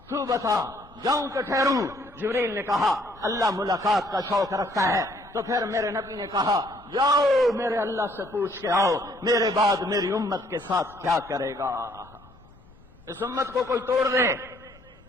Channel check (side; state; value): left; noise; rumble, 27 dB below the sound